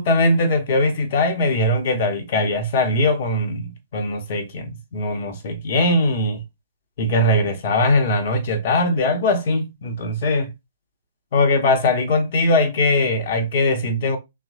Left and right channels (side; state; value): both; inverted; correlation -0.44